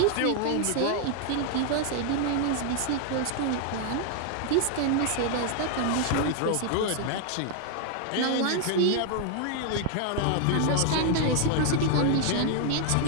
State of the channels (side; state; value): both; different; correlation 0.00